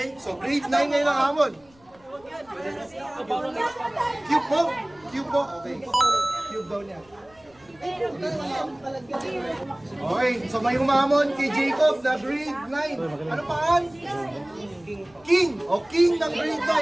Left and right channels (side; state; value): left; noise; rumble, 29 dB below the sound